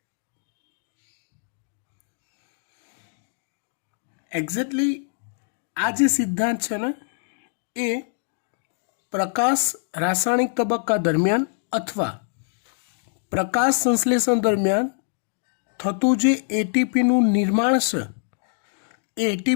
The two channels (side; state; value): right; silent; digital silence